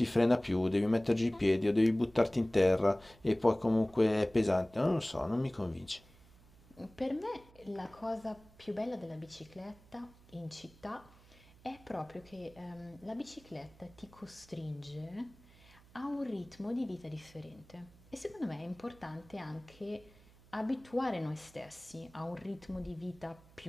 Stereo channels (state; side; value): noise; right; hum, 25 dB below the sound